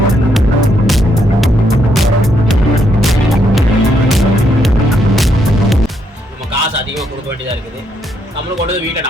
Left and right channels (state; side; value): normal; both; correlation 0.75